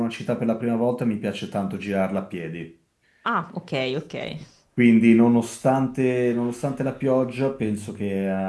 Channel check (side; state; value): both; identical; correlation 1.00